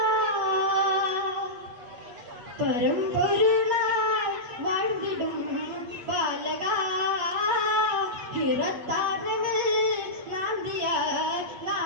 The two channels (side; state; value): left; late; 8.3 ms